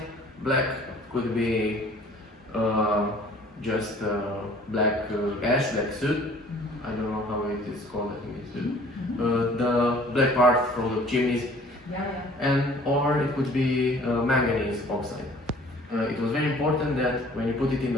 black could be just black ash, black soot. I don't know how it is called, I think it's soot. The black part from the chimneys, and or it could be manganese oxide. It was very important that when you put it in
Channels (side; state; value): both; normal; correlation 0.52